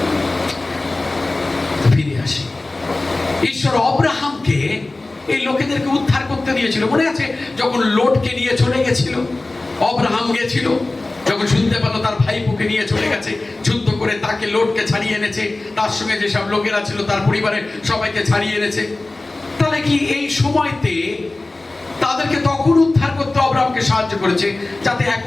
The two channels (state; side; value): quieter; right; 3.0 dB